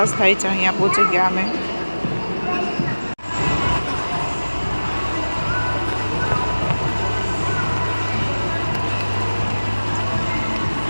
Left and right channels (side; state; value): both; inverted; correlation -1.00